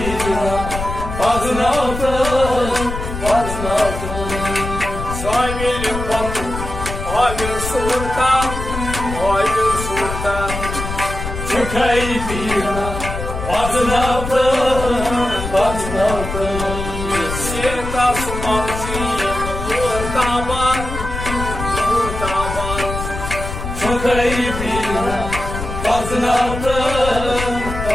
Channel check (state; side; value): noise; left; rumble, 6 dB below the sound